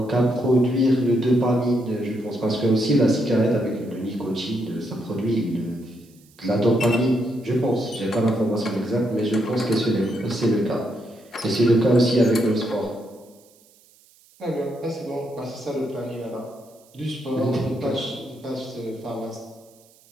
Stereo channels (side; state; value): right; noise; hiss, 29 dB below the sound